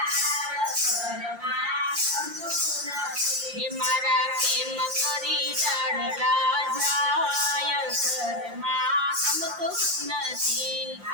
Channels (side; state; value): left; late; 5.7 ms